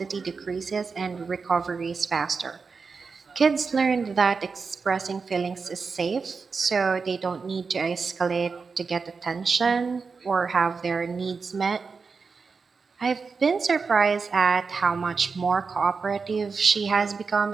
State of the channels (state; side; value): quieter; left; 4.9 dB